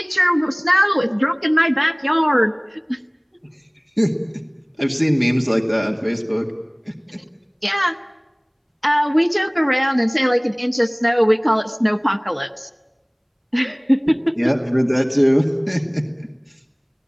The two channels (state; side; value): identical; both; correlation 1.00